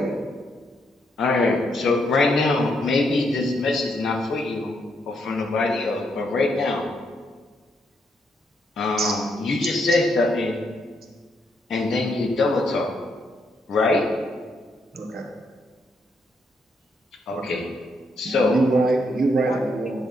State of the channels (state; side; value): normal; both; correlation 0.76